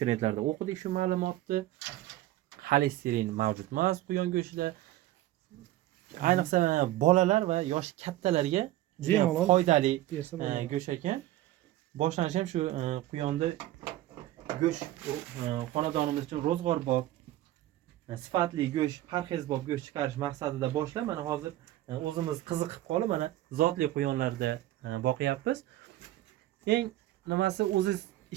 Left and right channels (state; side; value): quieter; left; 15.2 dB